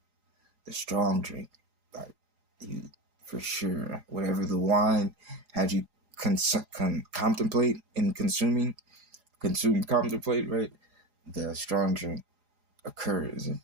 The strong drink, like you, for sure, whatever the wine had you contemplate in contemplate, right? The strong drink occurs,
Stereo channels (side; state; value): left; late; 4.8 ms